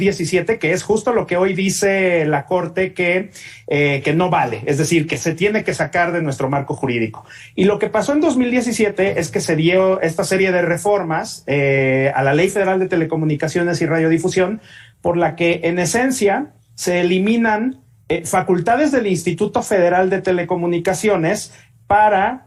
Que es justo lo que hoy dice la Corte que no vale, es decir, que se tiene que sacar de nuestro marco jurídico. Y lo que pasó en 2017 es que se dio esta serie de reformas a la Ley Federal de Telecomunicaciones y Radiodifusión, por la que en esencia se eliminan facultades del Instituto Federal de Telecomunicaciones para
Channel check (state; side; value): identical; both; correlation 1.00